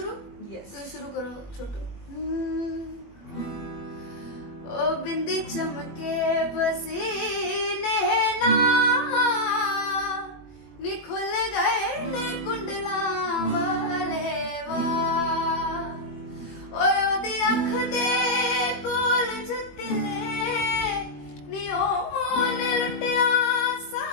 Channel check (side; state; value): right; late; 21 ms